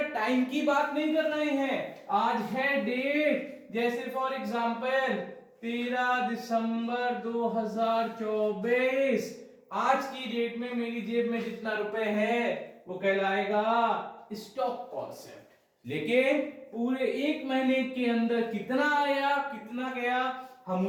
टाइम की बात नहीं कर रहे हैं. आज है डेट, जैसे फॉर एग्जांपल 13 दिसंबर 2024. आज की डेट में मेरी जेब में जितना रुपए है वो कहलाएगा स्टॉक कॉन्सेप्ट. लेकिन पूरे एक महीने के अंदर कितना आया, कितना गया, हम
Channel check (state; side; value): identical; both; correlation 1.00